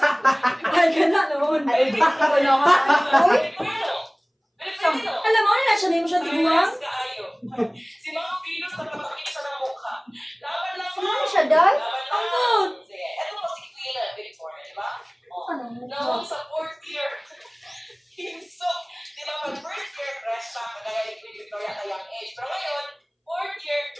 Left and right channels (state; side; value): identical; both; correlation 1.00